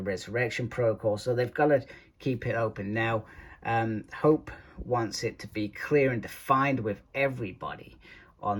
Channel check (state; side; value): identical; both; correlation 1.00